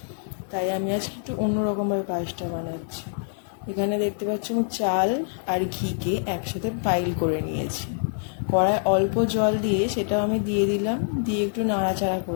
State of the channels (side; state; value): right; silent; digital silence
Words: তাই আমি আজকে একটু অন্যরকমভাবে পায়েসটা বানাচ্ছি। এখানে দেখতে পাচ্ছ আমি চাল আর ঘিকে একসাথে পাইল করে নিয়েছি। কড়ায় অল্প জল দিয়ে সেটাও আমি দিয়ে দিলাম, দিয়ে একটু নাড়াচাড়া